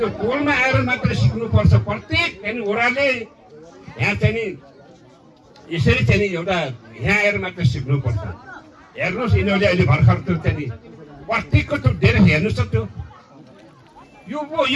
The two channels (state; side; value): identical; both; correlation 1.00